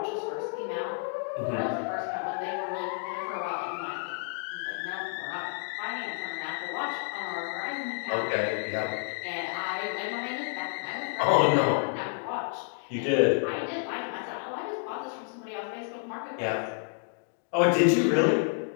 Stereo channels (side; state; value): right; silent; 58 dB below the other